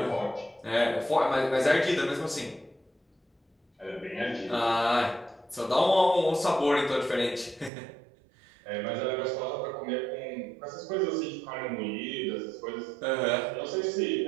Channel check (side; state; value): left; drops out; at 7.7 s